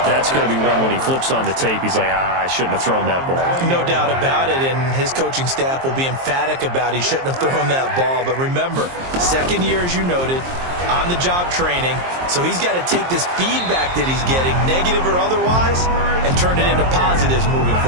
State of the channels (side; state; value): left; late; 23 ms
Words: that's going to be one when he flips on the tape. He's like, I shouldn't have thrown that ball. No doubt about it, and his coaching staff will be emphatic about he shouldn't have thrown that ball. But remember, 2nd year, as you noted, on-the-job training. So he's got to take this feedback that he's getting, negative or otherwise, and turn it into positives moving